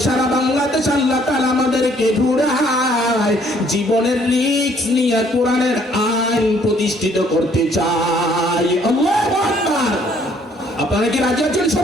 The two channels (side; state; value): both; normal; correlation 0.63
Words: সারা বাংলাদেশ আল্লাহ তাআলা আমাদেরকে ঘুরায় জীবনের রিস্ক নিয়ে কোরআনের আইন প্রতিষ্ঠিত করতে চাই। আল্লাহু আকবার। আপনারা কি রাজি আছেন